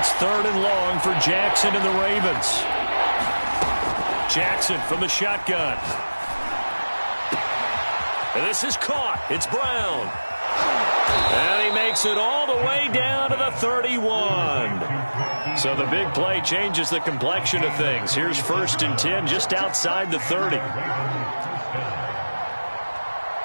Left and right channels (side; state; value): both; inverted; correlation -1.00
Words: 3rd and long for Jackson and the Ravens. Jackson from the shotgun. And this is caught. It's Brown. And he makes it all the way down to the 31. So the big play changes the complexion of things. Here's 1st and 10 just outside the 30.